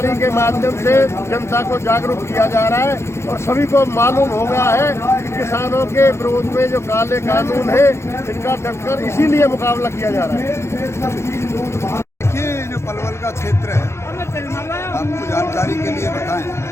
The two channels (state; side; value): late; right; 0.13 ms